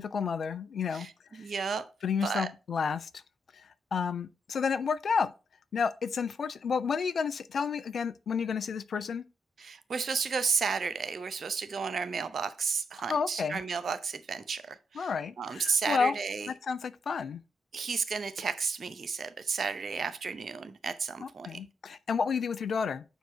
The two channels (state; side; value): normal; both; correlation 0.79